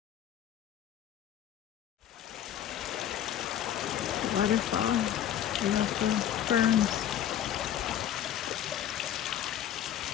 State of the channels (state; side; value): quieter; right; 10.7 dB